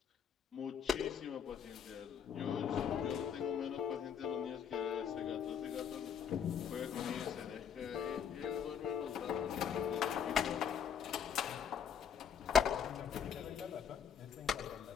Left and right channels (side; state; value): right; quieter; 7.8 dB